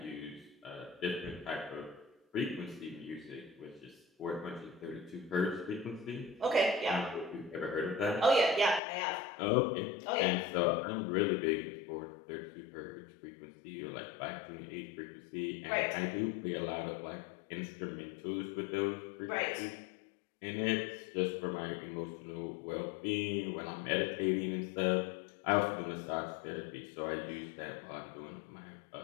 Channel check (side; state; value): right; drops out; at 8.8 s